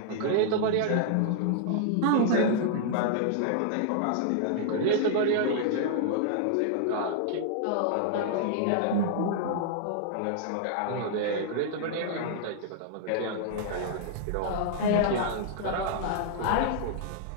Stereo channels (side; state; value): both; different; correlation -0.01